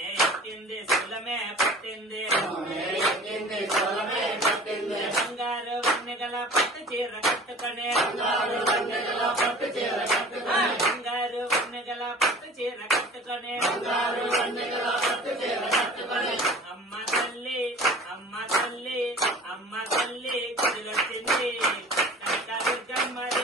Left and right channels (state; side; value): normal; both; correlation 0.43